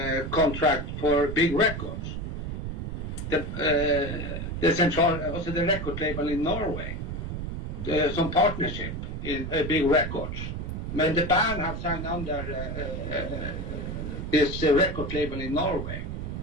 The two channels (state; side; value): noise; right; rumble, 5 dB below the sound